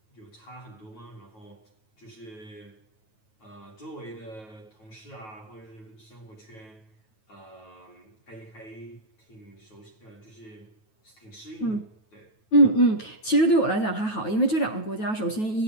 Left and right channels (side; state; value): right; late; 9.3 ms